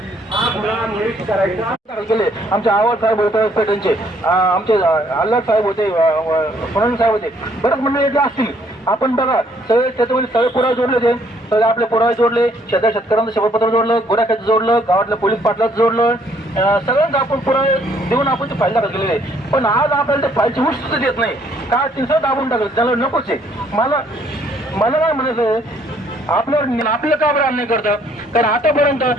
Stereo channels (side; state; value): both; normal; correlation 0.65